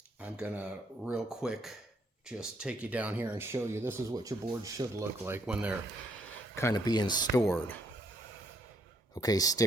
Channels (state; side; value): normal; both; correlation 0.70